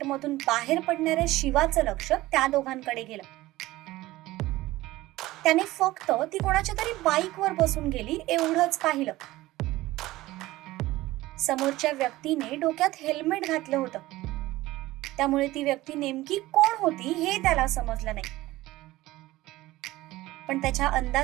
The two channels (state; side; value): quieter; left; 17.7 dB